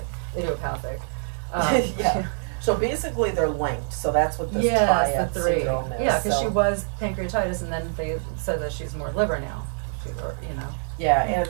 idiopathic. So basically, they're linked. So that's what this triad syndrome is. Yeah, because she was pancreatitis, and then they said that she's more liver now. You know. Yeah, and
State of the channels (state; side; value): silent; left; digital silence